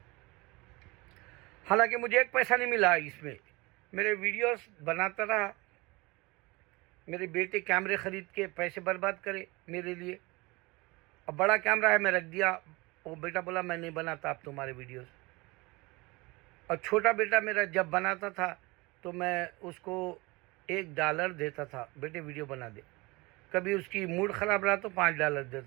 حالانکہ مجھے ایک پیسہ نہیں ملا اس میں، میرے ویڈیوز بناتا رہا، میرے بیٹے کیمرے خرید کے پیسے برباد کرے میرے لیے. اب بڑا کیمرہ ہے میں رکھ دیا، وہ بیٹا بولا میں نہیں بناتا اب تمہارے ویڈیوز. اور چھوٹا بیٹا میرا جب بناتا تھا تو میں اس کو $1 دیتا تھا، بیٹے ویڈیو بنا دے. کبھی اس کی موڈ خراب رہا تو $5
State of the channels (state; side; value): quieter; left; 24.0 dB